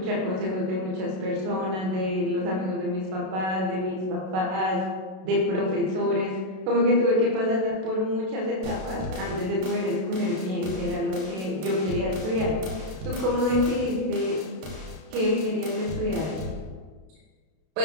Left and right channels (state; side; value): late; left; 32 ms